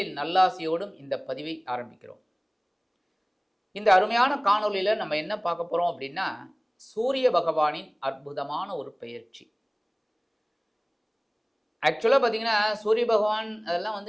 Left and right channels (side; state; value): both; identical; correlation 1.00